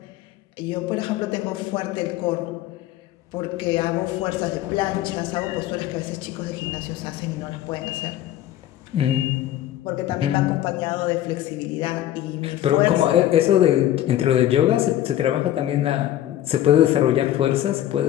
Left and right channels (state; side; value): quieter; right; 12.9 dB